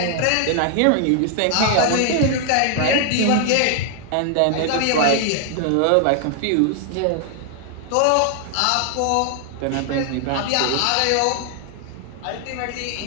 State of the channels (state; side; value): different; both; correlation 0.00